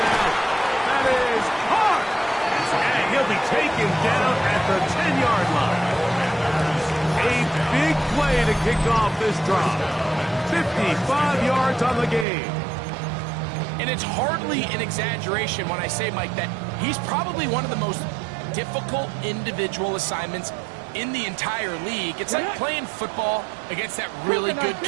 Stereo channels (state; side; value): drops out; left; at 12.2 s